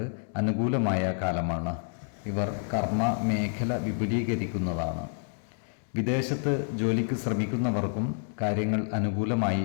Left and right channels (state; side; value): silent; right; digital silence